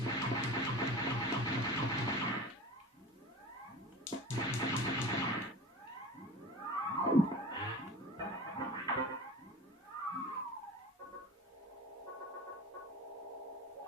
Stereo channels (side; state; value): both; normal; correlation 0.36